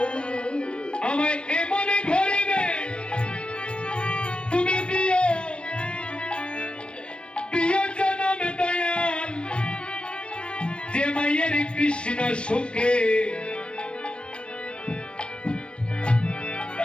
আমায় এমনে ঘরে তুমি দিও প্রিয় জনম দয়াল যে মায়ের কৃষ্ণ সুখে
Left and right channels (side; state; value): right; late; 0.056 ms